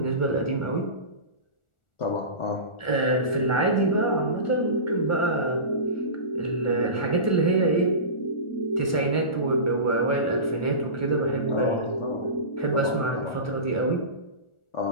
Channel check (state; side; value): late; right; 1.4 ms